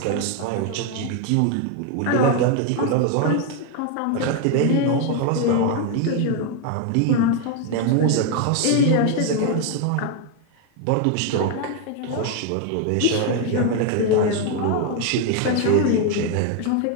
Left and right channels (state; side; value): different; both; correlation 0.01